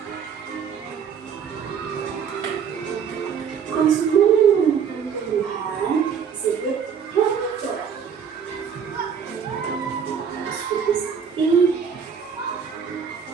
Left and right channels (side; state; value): left; quieter; 7.2 dB